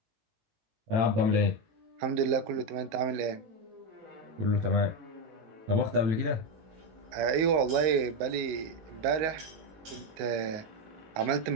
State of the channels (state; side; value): late; left; 19 ms